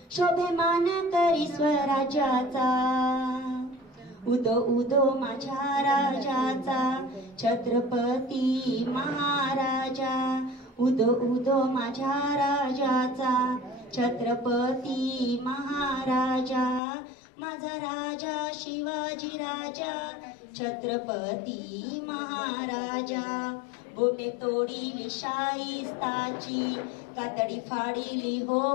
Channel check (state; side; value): drops out; right; at 16.8 s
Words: शोभेमान करी स्वराज्याचा, उदो उदो माझ्या राजाचा, छत्रपती महाराजा। उदो उदो माझ्या राजाचा, छत्रपती महाराजा। माझा राजा शिवाजी राजा, छत्रपती महाराजा। बोटे तोडीली शाईस्ताची, कातडी फाडीली हो